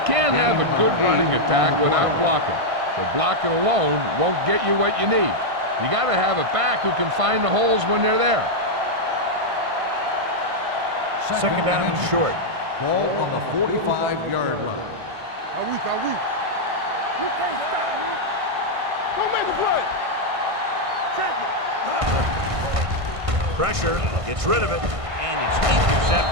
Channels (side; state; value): left; late; 1.5 ms